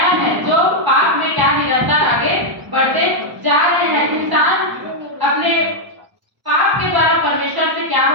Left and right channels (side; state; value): left; late; 1.0 ms